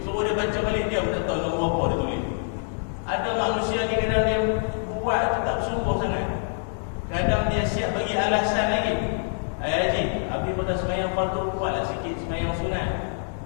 Suruh dia baca balik, dia pun tak tahu nombor apa dia tulis. Ada manusia ni kadang dia buat tu tak bersungguh sangat. Kadang dia siap bagi alasan lagi. Haji, habis pada semayang fardu buatlah sikit semayang sunat.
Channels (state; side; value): silent; right; digital silence